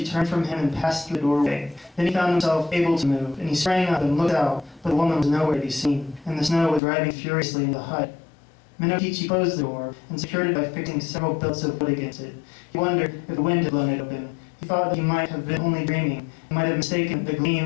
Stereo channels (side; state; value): right; drops out; at 6.8 s